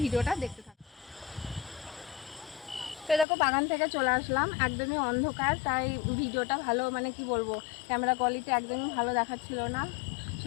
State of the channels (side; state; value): right; drops out; at 3.2 s